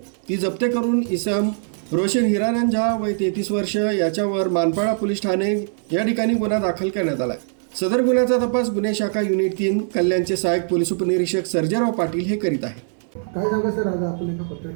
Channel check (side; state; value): left; silent; 64 dB below the other